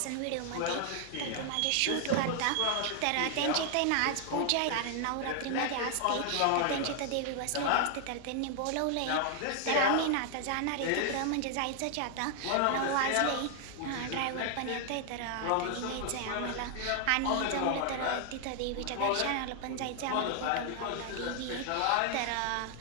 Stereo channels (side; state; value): both; different; correlation 0.00